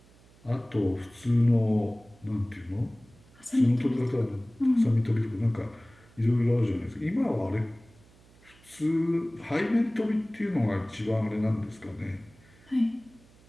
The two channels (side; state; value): right; noise; hum, 27 dB below the sound